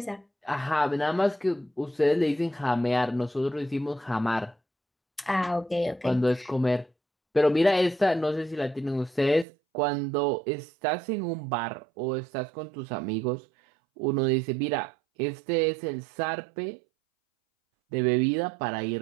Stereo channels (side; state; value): left; drops out; at 9.5 s